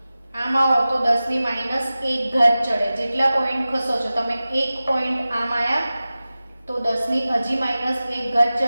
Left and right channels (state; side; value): inverted; both; correlation -0.96